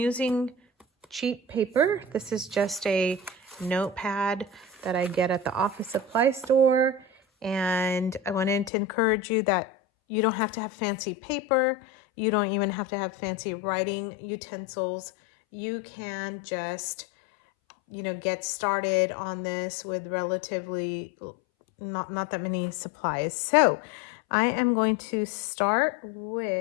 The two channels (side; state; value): right; drops out; at 8.7 s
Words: cheap paper. This is just a notepad that I get at the office supply store, and I wanted to encourage you that you don't have to have fancy paper. You don't even have to have fancy writing utensils. You can just, you know, get started on this with relatively not that many supplies. So I am going to start